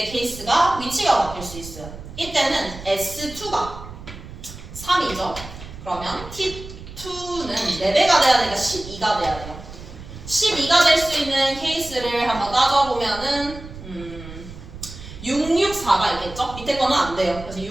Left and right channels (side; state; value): right; noise; rumble, 13 dB below the sound